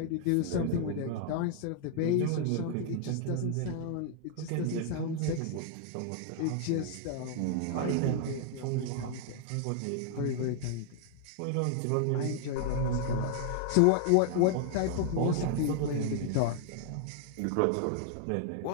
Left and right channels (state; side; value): different; both; correlation -0.01